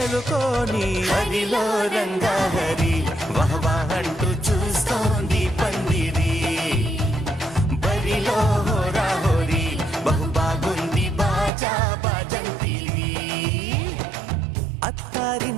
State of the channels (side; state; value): left; drops out; at 11.5 s